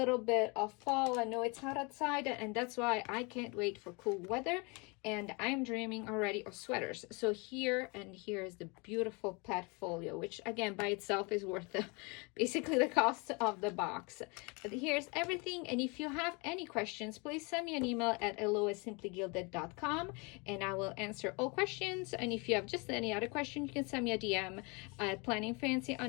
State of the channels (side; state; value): right; quieter; 29.9 dB